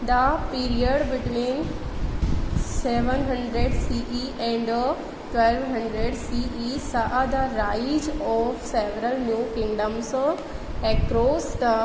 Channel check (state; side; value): identical; both; correlation 1.00